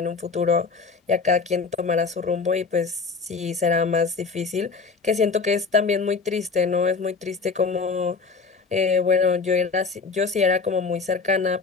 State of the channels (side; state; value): right; quieter; 4.7 dB